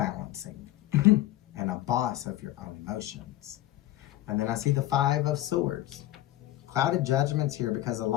and a boss of your own emotions. And then I see the Five of Swords. Clouded judgments here because a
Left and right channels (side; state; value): right; quieter; 15.0 dB